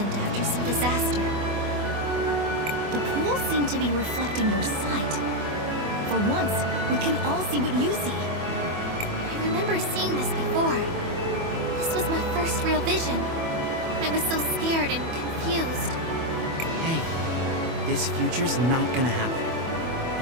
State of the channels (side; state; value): left; late; 24 ms